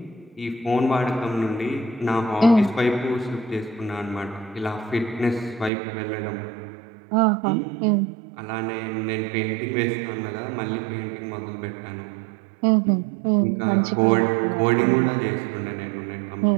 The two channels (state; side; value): drops out; left; at 5.7 s